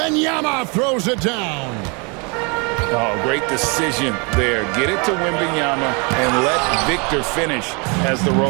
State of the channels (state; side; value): quieter; left; 32.2 dB